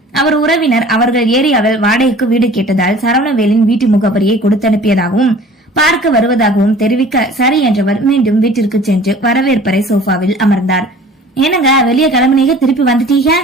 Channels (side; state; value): both; normal; correlation 0.47